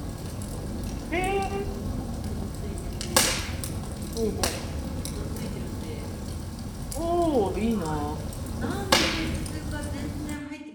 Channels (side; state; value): both; identical; correlation 1.00